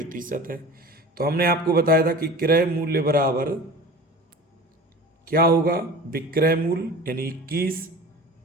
है। तो हमने आपको बताया था कि क्रय मूल्य बराबर क्या होगा, विक्रय मूल्य यानी 21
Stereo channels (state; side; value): normal; both; correlation 0.38